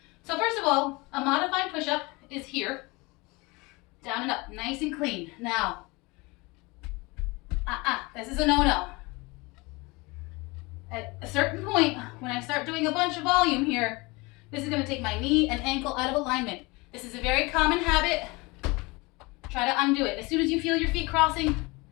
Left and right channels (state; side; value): quieter; right; 25.1 dB